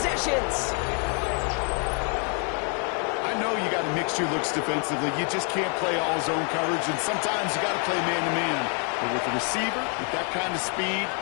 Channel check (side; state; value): right; quieter; 39.6 dB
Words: I know you got to mix your looks defensively. You just can't play all zone coverage, and sometimes you got to play man-to-man. But with the receiver, with that kind of speed,